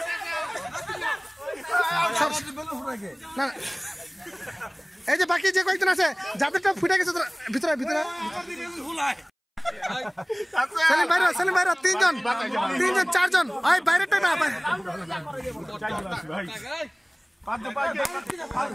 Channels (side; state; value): both; identical; correlation 1.00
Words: না এই যে বাকি যে কয়েকজন আছে যাদেরটা ফুটে গেছে ভিতরে ভিতরে সেলিম বাইরে, সেলিম বাইরে। তিনজন চারজন। ওই বাইরেটা না